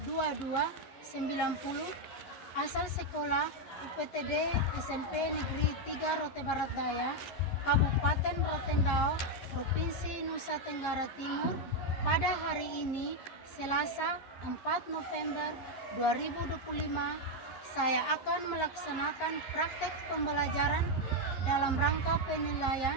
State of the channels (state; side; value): late; right; 11 ms